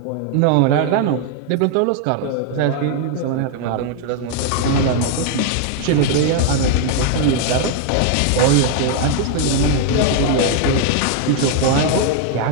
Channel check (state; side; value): different; both; correlation 0.00